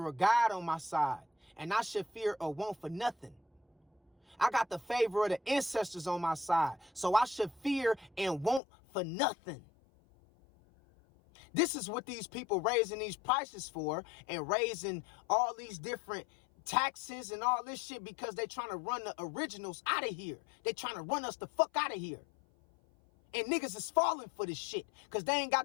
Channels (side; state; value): right; drops out; at 8.6 s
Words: of God on my side, and I should fear or want for nothing. I got the favor of the ancestors on my side, so I should fear and want for nothing. This is what these people raising these prices for and raising all these different taxes and all this shit because they trying to run the originals out of here. They trying to run us the fuck out of here. And niggas is falling for this shit because they ain't